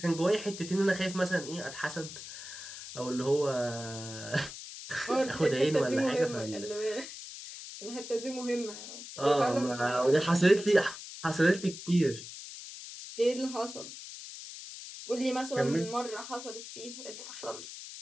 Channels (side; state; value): left; noise; hiss, 11 dB below the sound